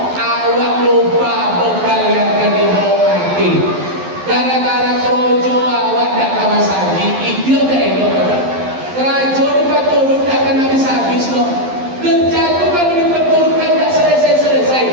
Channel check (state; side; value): late; left; 11 ms